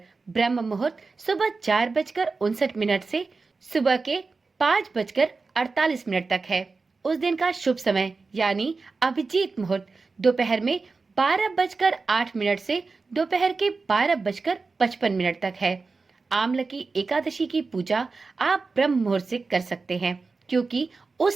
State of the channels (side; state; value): left; quieter; 4.2 dB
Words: ब्रह्म मुहूर्त सुबह 4:59 से सुबह के 5:48 तक है। उस दिन का शुभ समय यानी अभिजीत मुहूर्त दोपहर में 12:08 से दोपहर के 12:55 तक है। आमलकी एकादशी की पूजा आप ब्रह्म मुहूर्त से कर सकते हैं क्योंकि